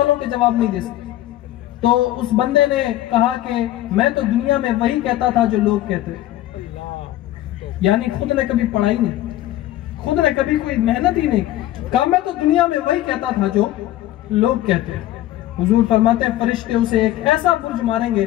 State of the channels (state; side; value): quieter; right; 14.4 dB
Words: के जवाब नहीं दे सकते? तो उस बंदे ने कहा कि मैं तो दुनिया में वही कहता था जो लोग कहते हैं। यानी खुद ने कभी पढ़ाई नहीं, खुद ने कभी कोई मेहनत ही नहीं। कहा मैं तो दुनिया में वही कहता था जो लोग कहते हैं। हुजूर फरमाते हैं फरिश्ते उसे एक ऐसा बुर्ज मारेंगे